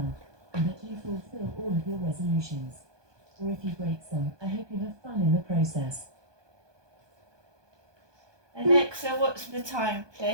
and that you fulfill all of your resolutions. Or if you break some, I hope you have fun in the process. Alexa, what's the time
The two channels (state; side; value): late; left; 1.2 ms